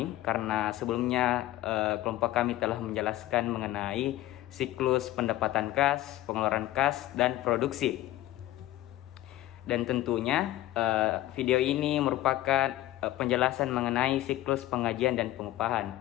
karena sebelumnya kelompok kami telah menjelaskan mengenai siklus pendapatan kas, pengeluaran kas, dan produksi. Dan tentunya video ini merupakan penjelasan mengenai siklus penggajian dan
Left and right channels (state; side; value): quieter; right; 15.0 dB